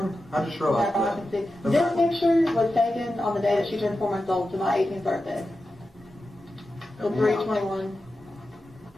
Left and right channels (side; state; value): both; normal; correlation 0.91